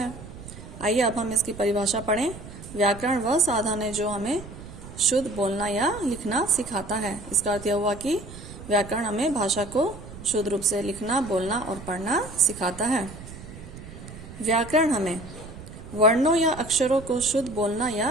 आइए अब हम इसकी परिभाषा पढ़ें। व्याकरण वह साधन है जो हमें शुद्ध बोलना या लिखना सिखाता है। इसका अर्थ यह हुआ कि व्याकरण हमें भाषा को शुद्ध रूप से लिखना, बोलना और पढ़ना सिखाता है। व्याकरण हमें वर्णों या अक्षरों को शुद्ध बोलना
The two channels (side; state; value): right; noise; rumble, 14 dB below the sound